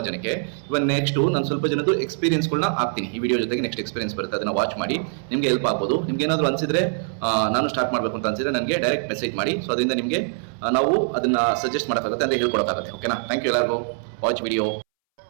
ಜನಕ್ಕೆ. ಇವಾಗ ನೆಕ್ಸ್ಟು ನಾನು ಸ್ವಲ್ಪ ಜನದ್ದು ಎಕ್ಸ್ಪೀರಿಯನ್ಸ್ಗಳನ್ನ ಹಾಕ್ತೀನಿ ಈ ವಿಡಿಯೋ ಜೊತೆಗೆ. ನೆಕ್ಸ್ಟ್ ಎಕ್ಸ್ಪೀರಿಯನ್ಸ್ ಬರುತ್ತೆ, ಅದನ್ನು ವಾಚ್ ಮಾಡಿ, ನಿಮಗೆ ಹೆಲ್ಪ್ ಆಗ್ಬೋದು. ನಿಮ್ಗೆ ಏನಾದರೂ ಅನಿಸಿದ್ರೆ, ನಾನು ಸ್ಟಾರ್ಟ್ ಮಾಡಬೇಕು ಅಂತ ಅನಿಸಿದ್ರೆ ನನಗೆ ಡೈರೆಕ್ಟ್ ಮೆಸೇಜ್ ಮಾಡಿ. ಸೊ ಅದರಿಂದ ನಿಮಗೆ ನಾವು ಅದನ್ನು ಸಜೆಸ್ಟ್ ಮಾಡೋಕ್ಕಾಗುತ್ತೆ, ಅಂದರೆ ಹೇಳ್ಕೊಡೋಕ್ಕಾಗುತ್ತೆ. ಓಕೆನಾ? ಥ್ಯಾಂಕ್ ಯು ಎಲ್ಲರಿಗೂ. Watch video.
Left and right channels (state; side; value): silent; left; 63 dB below the other